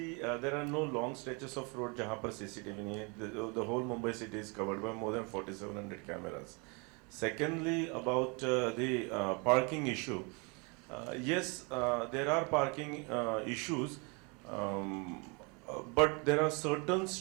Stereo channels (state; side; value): quieter; left; 31.4 dB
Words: there are no long stretches of road जहाँ पर CCTV नहीं है. The whole Mumbai city is covered by more than 4,700 cameras. Secondly, about the parking issue. Yes, there are parking issues. But there are certain